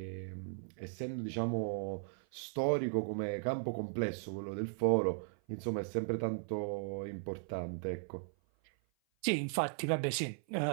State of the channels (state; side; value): silent; left; 53 dB below the other